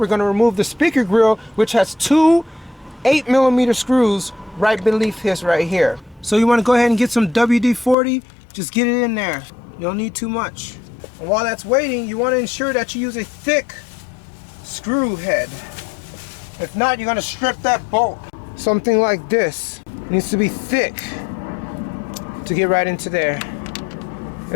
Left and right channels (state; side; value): drops out; right; at 8.0 s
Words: going to remove the speaker grill, which has two 8mm screws right beneath his right here. So you want to go ahead and get some WD-40, just get it in there. You don't need too much. And while that's waiting, you want to ensure that you use a thick screw head. If not, you're going to strip that bolt. Something like this. It needs to be thick to get right into there.